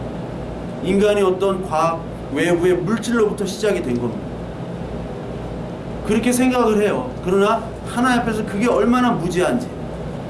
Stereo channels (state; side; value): identical; both; correlation 1.00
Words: 인간이 어떤 과학, 외부의 물질로부터 시작이 된 겁니다. 그렇게 생각을 해요. 그러나 하나님 앞에서 그게 얼마나 무지한지,